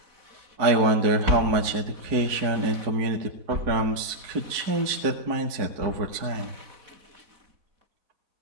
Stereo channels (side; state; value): left; late; 4.7 ms